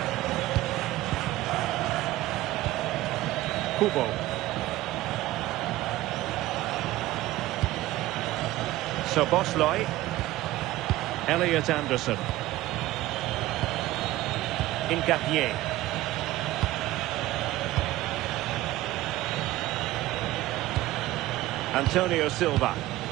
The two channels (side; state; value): left; quieter; 16.4 dB